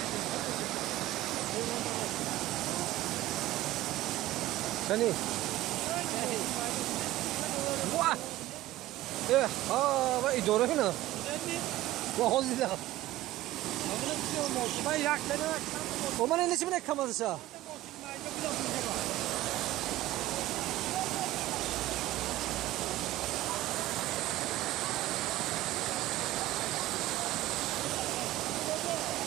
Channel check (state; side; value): quieter; left; 16.2 dB